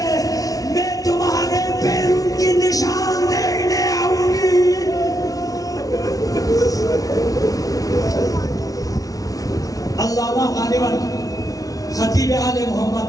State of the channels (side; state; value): right; late; 0.18 ms